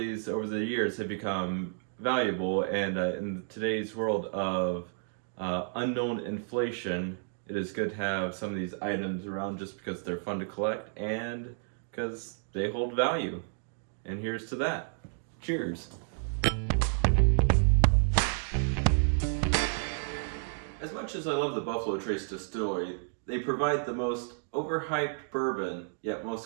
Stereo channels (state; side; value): silent; left; digital silence